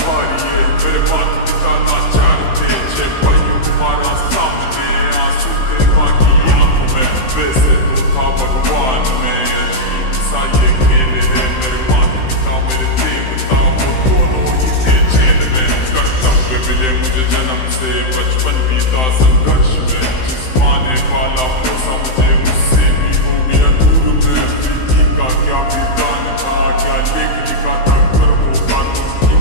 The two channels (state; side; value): late; right; 16 ms